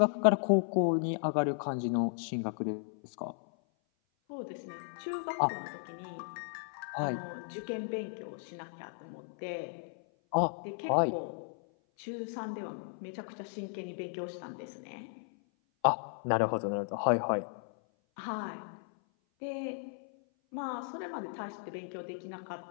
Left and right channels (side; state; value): right; silent; 54 dB below the other